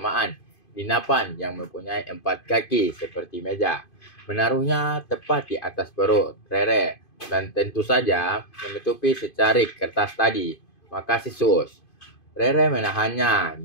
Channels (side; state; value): right; late; 2.5 ms